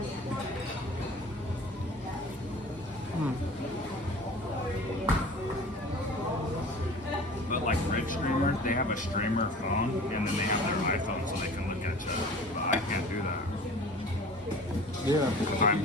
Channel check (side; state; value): both; normal; correlation 0.42